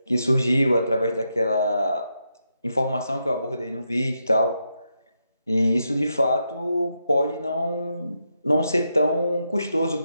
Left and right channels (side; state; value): both; inverted; correlation -0.83